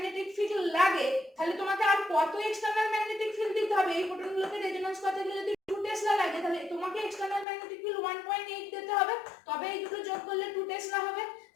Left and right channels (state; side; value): drops out; right; at 7.5 s